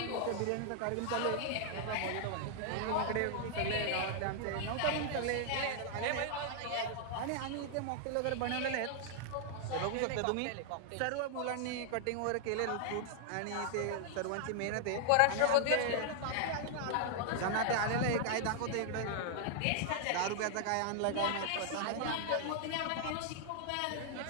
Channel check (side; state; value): both; different; correlation 0.00